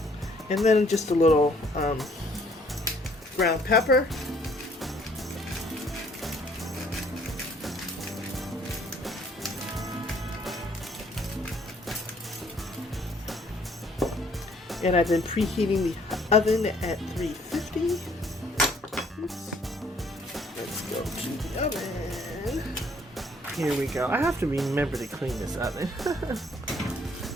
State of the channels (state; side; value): normal; both; correlation 0.61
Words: And then just a little ground pepper. And I've been preheating the oven at 350. Oops. Let's go to the oven. Here we go. I have to remember to clean this oven.